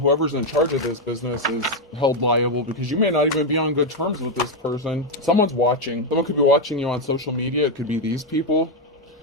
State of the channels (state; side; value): normal; both; correlation 0.03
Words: in charge of this business is held liable, because you may not even be on good terms with this person. Someone's watching. Someone could be watching you on social media. It could be these people.